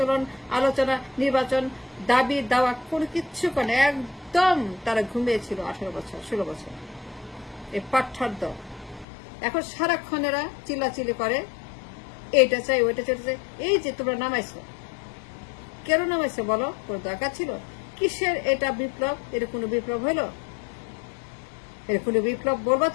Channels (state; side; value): drops out; right; at 9.1 s